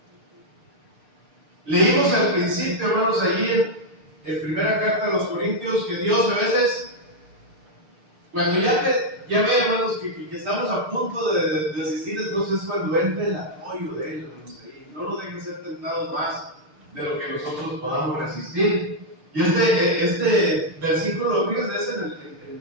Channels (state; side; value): late; left; 6.6 ms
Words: Leímos al principio, hermanos, allí en primera carta a los Corintios, que Dios a veces, cuando ya ve, hermanos, que estamos a punto de asistir, entonces es cuando entra el apoyo de Él, hermanos, ahí. No nos dejen ser tentados más de lo que nosotros podamos resistir. Y este versículo, fíjense, es en